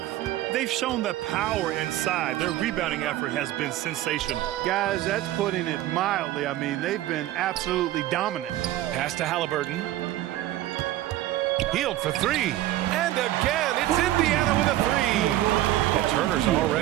They've shown that power inside. Their rebounding effort has been sensational. Guys, that's putting it mildly. I mean, they've been absolutely dominant. Pass to Halliburton. Hield for 3. And again, it's Indiana with a 3. And Turner's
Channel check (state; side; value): quieter; left; 14.6 dB